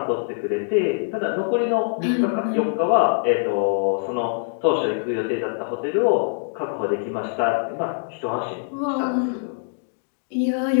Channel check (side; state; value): right; silent; digital silence